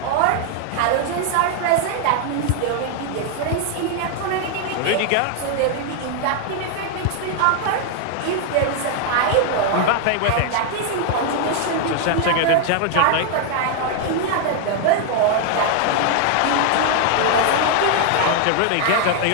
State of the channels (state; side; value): different; both; correlation 0.00